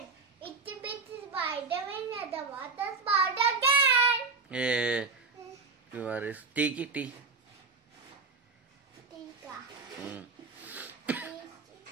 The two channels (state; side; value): quieter; left; 4.2 dB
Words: Itsy bitsy spider. When the water spout again. టీకి టీ టీకా